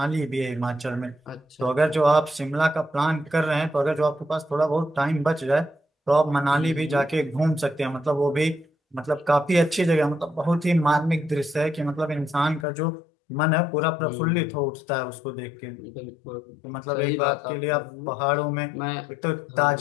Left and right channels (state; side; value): drops out; right; at 12.7 s